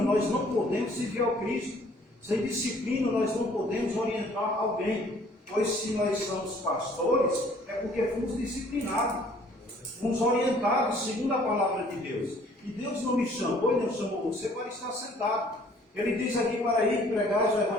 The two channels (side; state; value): both; normal; correlation 0.57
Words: nós não podemos servir ao Cristo. Sem disciplina, nós não podemos orientar alguém. Pois se nós somos pastores, é porque fomos disciplinados. Fomos orientados segundo a palavra de Deus. E Deus não me chamou, Ele não chamou você para estar sentado. Ele diz aqui para ir pregar o